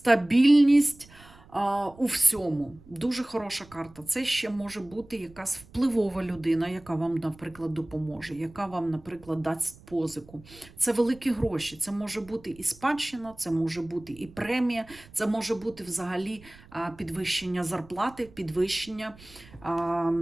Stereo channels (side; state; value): right; noise; rumble, 23 dB below the sound